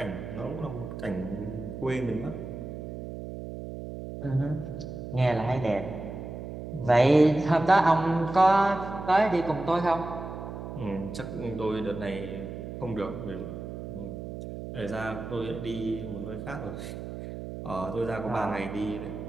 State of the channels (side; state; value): right; noise; hum, 8 dB below the sound